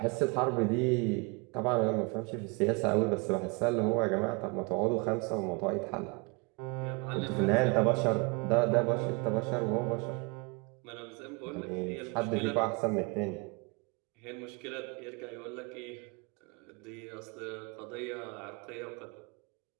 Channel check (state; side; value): quieter; left; 30.4 dB